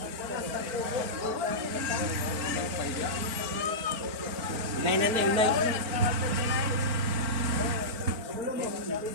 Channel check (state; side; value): late; left; 4.4 ms